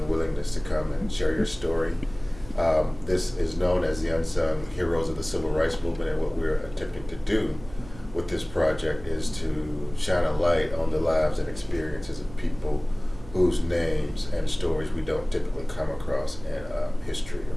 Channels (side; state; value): right; noise; hum, 18 dB below the sound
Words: willingness to come and share your story. This is known as the Unsung Heroes of the Civil Rights Movement, and what we're attempting to do with this project is to shine a light on the lives and experiences of people whose names and stories we don't typically come across in a history or